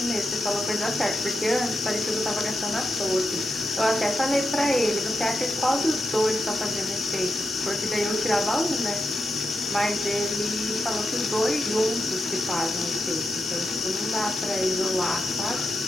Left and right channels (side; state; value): both; normal; correlation 0.86